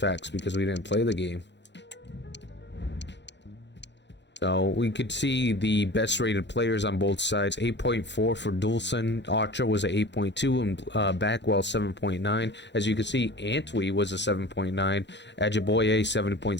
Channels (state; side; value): late; right; 0.52 ms